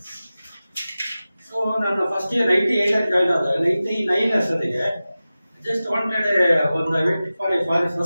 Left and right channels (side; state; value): both; inverted; correlation -0.95